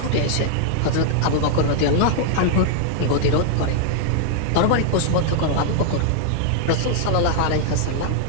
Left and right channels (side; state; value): both; different; correlation 0.00